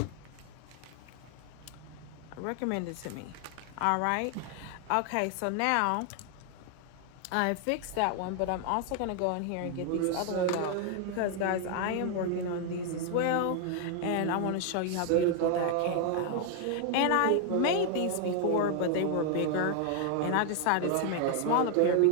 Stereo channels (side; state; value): both; different; correlation 0.00